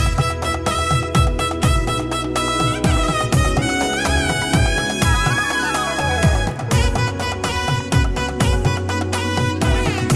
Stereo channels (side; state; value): both; identical; correlation 1.00